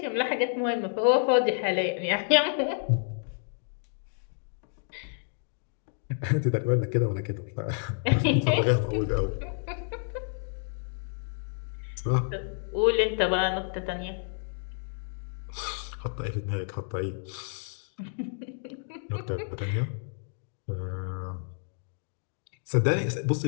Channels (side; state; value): right; silent; digital silence